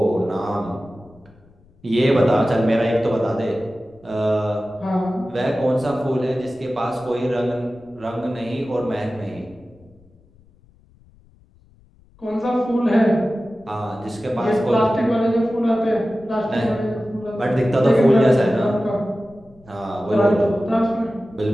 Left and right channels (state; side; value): noise; left; rumble, 29 dB below the sound